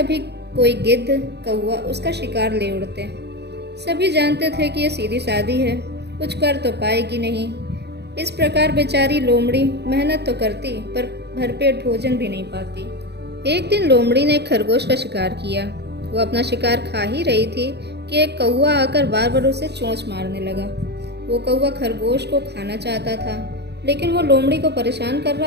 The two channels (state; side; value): late; left; 0.49 ms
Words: कोई गिद्ध कौवा उसका शिकार ले उड़ते। सभी जानते थे कि ये सीधी सादी है, कुछ कर तो पाएगी नहीं। इस प्रकार बेचारी लोमड़ी मेहनत तो करती, पर भरपेट भोजन भी नहीं पाती। एक दिन लोमड़ी ने एक खरगोश का शिकार किया। वो अपना शिकार खा ही रही थी कि एक कौवा आकर बार बार उसे चोंच मारने लगा। वो कौवा खरगोश को खाना चाहता था, लेकिन वो लोमड़ी को परेशान कर